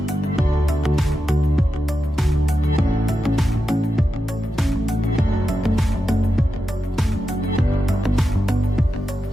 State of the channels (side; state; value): both; normal; correlation 0.89